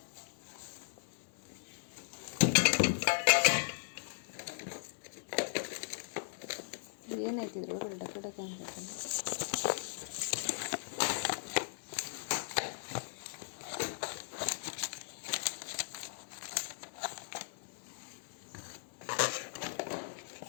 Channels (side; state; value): right; silent; digital silence